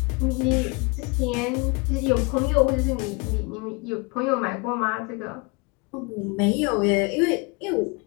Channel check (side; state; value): right; quieter; 28.7 dB